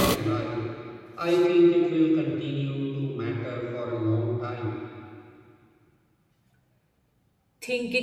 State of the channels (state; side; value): identical; both; correlation 1.00